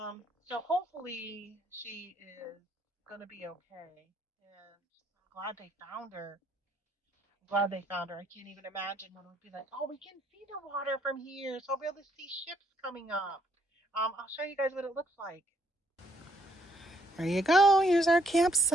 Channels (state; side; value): normal; both; correlation 0.70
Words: hopefully she is gonna be okay, and I'm glad they found her. I'm glad they found her. I can't even imagine what it would be like. Oh, we can see the water from here, so I'll be able to see ships coming up. I'll show you guys what it looks like. There you go. Here's our